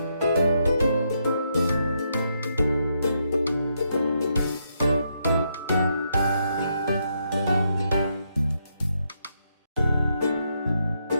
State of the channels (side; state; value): both; inverted; correlation -0.78